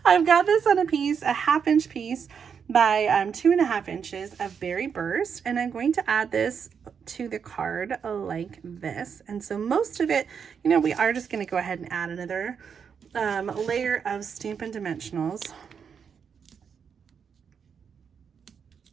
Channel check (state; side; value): quieter; left; 6.8 dB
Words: I've got this on a piece, a 1/2 inch piece by 2.5 inches of Berry Burst, and I'm going to add this to the card like this. And so most of it, you know, we are just going to go ahead and add another layer of Stampin' Dimensionals.